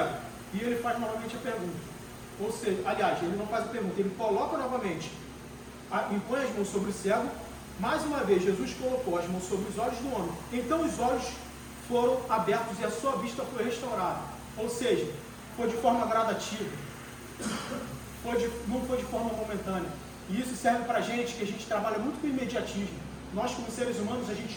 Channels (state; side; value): identical; both; correlation 1.00